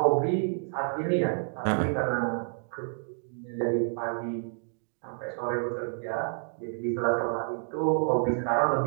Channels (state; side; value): silent; left; 58 dB below the other